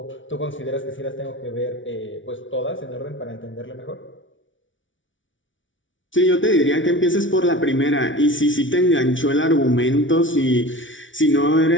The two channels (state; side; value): late; right; 0.56 ms